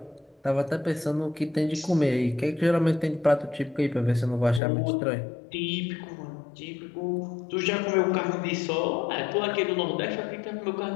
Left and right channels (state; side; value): drops out; right; at 4.6 s